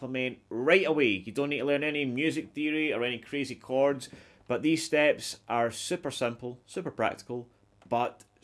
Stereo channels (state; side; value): identical; both; correlation 1.00